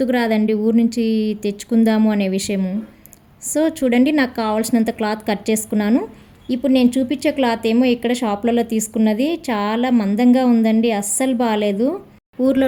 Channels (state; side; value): identical; both; correlation 1.00